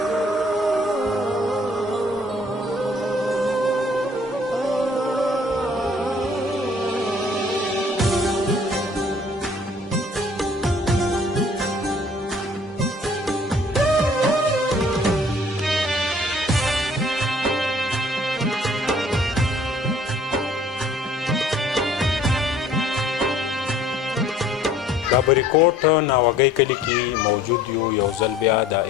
دا بریکوټ ناوګۍ کلي کې موجود یو ځل بیا د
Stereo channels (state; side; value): normal; both; correlation 0.55